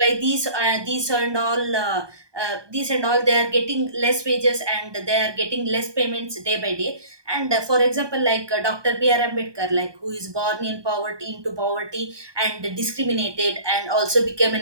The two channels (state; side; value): late; left; 1.2 ms